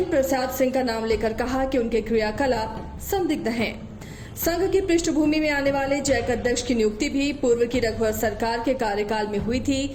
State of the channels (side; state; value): both; identical; correlation 1.00